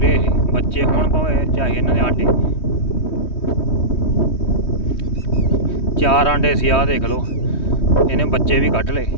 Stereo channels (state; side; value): late; right; 3.2 ms